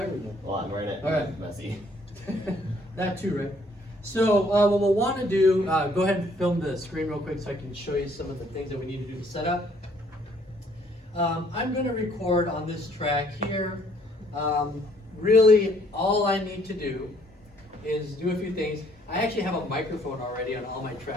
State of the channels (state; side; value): normal; both; correlation 0.64